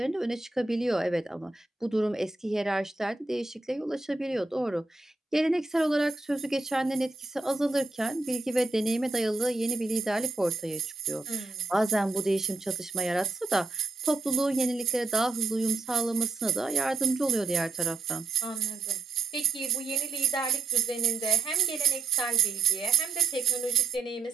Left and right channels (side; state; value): left; quieter; 4.2 dB